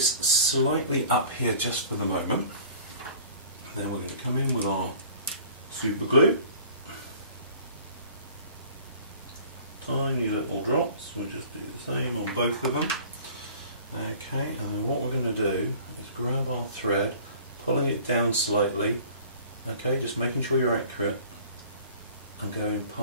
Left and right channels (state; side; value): inverted; both; correlation -0.48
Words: slightly up here just for the moment. And then we're going to come in with our super glue. Tiny little drops, we'll just do the same on both of them. Okay, and then what we're going to do is grab our thread, pulling it down slightly, okay, just making sure you're accurate, and going